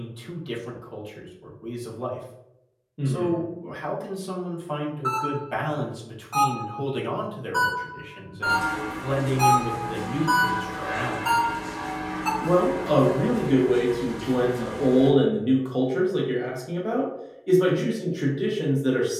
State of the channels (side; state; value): both; identical; correlation 1.00